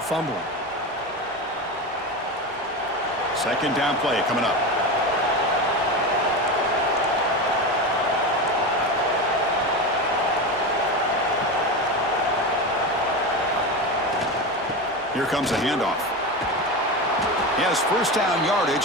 fumbling. Second down play coming up. Here comes a handoff. He has first down yardage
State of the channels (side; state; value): both; normal; correlation 0.21